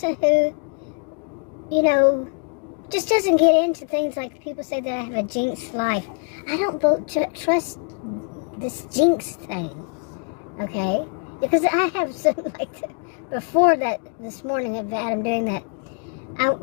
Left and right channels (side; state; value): right; quieter; 39.7 dB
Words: who, just doesn't get into things like people say that I have a jinxed life. I don't trust this jinx thing, okay? Because I have some, before that, this morning of Adam doing that, I